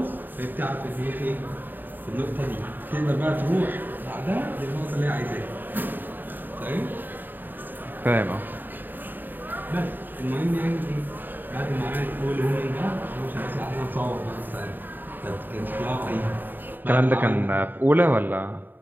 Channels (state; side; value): late; left; 0.091 ms